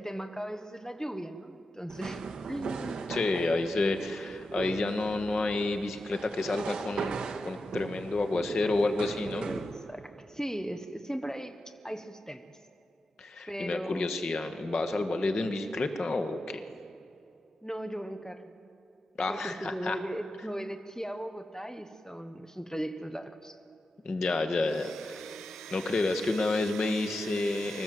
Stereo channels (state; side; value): normal; both; correlation 0.89